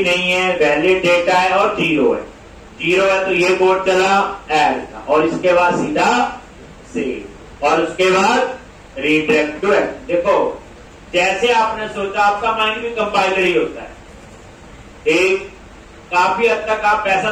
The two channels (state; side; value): identical; both; correlation 1.00